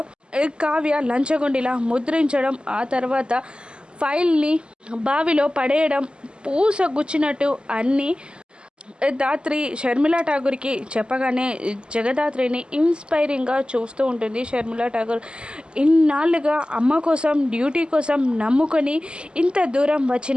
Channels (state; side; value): late; left; 0.050 ms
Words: కావ్య లంచగొండిలా ముద్రించడం, ఆ తర్వాత ఫైల్ని బావిలో పడేయడం, పూస గుచ్చినట్టు అన్నీ దాత్రి షర్మిలా ఠాగూర్కి చెప్పగానే జగదాత్రిని ఇన్స్పైరింగ్గా చూస్తూ ఉంటుంది. షర్మిలా ఠాగూర్ ఇన్నాళ్ళుగా అమ్మ కోసం డ్యూటీ కోసం నమ్ముకొని ఇంత దూరం